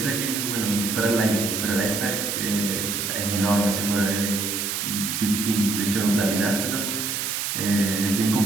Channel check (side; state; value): right; noise; hiss, 2 dB below the sound